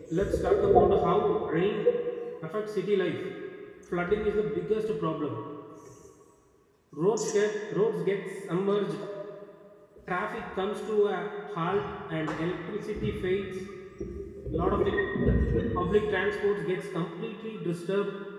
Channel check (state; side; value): identical; both; correlation 1.00